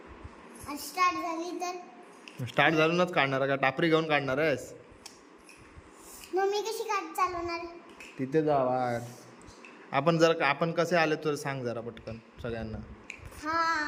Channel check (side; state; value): both; identical; correlation 1.00